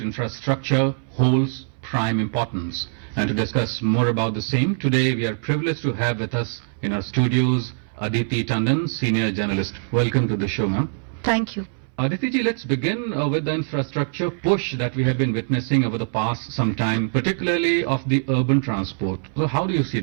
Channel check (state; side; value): silent; left; 64 dB below the other